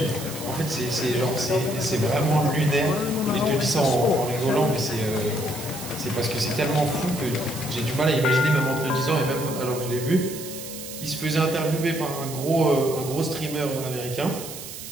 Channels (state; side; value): noise; right; hiss, 11 dB below the sound